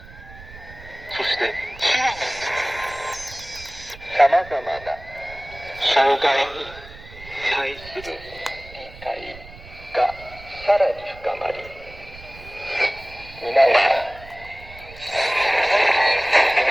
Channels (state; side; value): noise; right; rumble, 18 dB below the sound